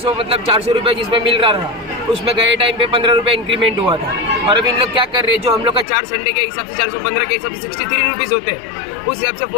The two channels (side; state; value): right; drops out; at 5.9 s